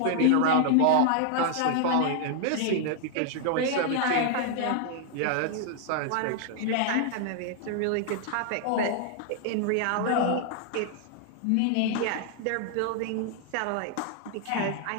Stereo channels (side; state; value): both; different; correlation 0.00